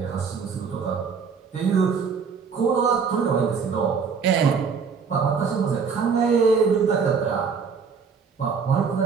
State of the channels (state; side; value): quieter; left; 5.8 dB